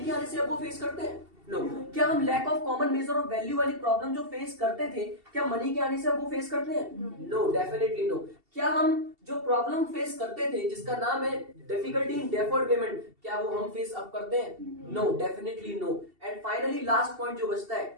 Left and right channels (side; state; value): left; late; 2.7 ms